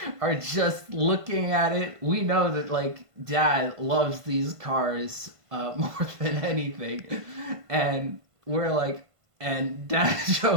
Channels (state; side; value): late; left; 1.5 ms